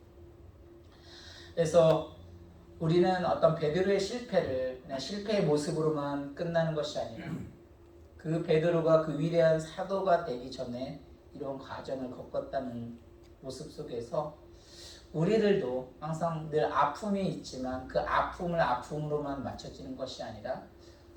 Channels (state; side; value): identical; both; correlation 1.00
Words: 그래서 우리는 어떤 베드로의 실패를 그냥 실패의 모습으로만 끝나는 것이 아니라 그 베드로가 그 위대한 사도가 되기 전에 이런 과정을 겪었다는 모습 속에서 우리들도 항상 늘 아픔이 있지만 그 아픔을 아픔으로만 맞춰지는 것이 아니라